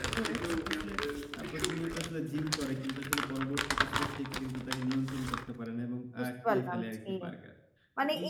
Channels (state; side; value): identical; both; correlation 1.00